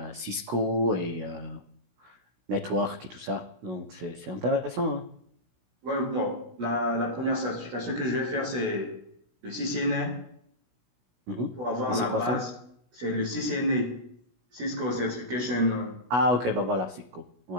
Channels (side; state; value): left; late; 16 ms